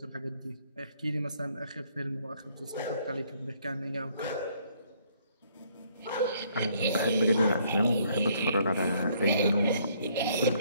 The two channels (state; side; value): inverted; both; correlation -0.65